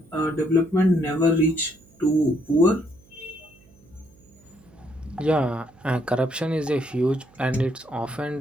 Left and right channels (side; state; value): right; noise; hum, 28 dB below the sound